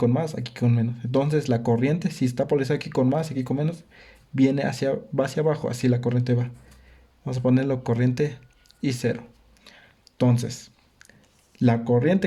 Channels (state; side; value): identical; both; correlation 1.00